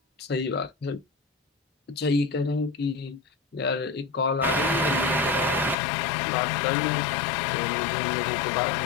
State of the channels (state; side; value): drops out; right; at 5.8 s